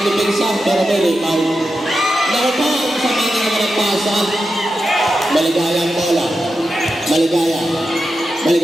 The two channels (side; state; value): both; normal; correlation 0.89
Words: lipinsa. Pero may rebound. Naku po. Sama na naman ang pasa. Maligaya ang bola. Maligaya.